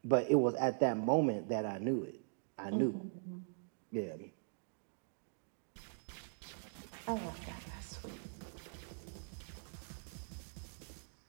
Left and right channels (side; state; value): left; silent; digital silence